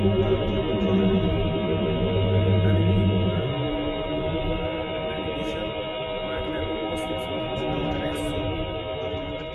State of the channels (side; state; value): both; identical; correlation 1.00